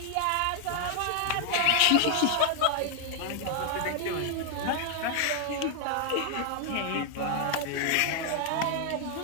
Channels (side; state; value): both; different; correlation 0.00